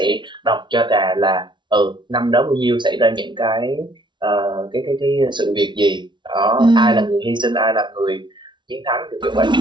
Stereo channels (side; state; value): left; late; 0.23 ms